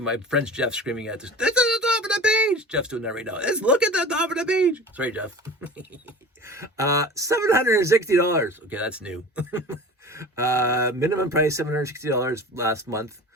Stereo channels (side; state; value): both; normal; correlation 0.37